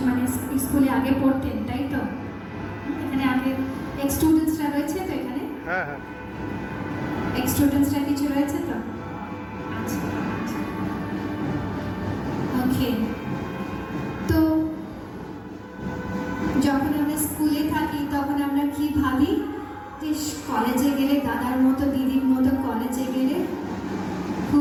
এক্স স্টুডেন্টসরা কিছু রয়েছে তো? আচ্ছা, ওকে। তো যখন আমরা স্কুলে থাকি তখন আমরা কি ভাবি যে কলেজে গেলে, দাদার মতো দিদির মতো কলেজে গেলে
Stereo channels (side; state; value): both; identical; correlation 1.00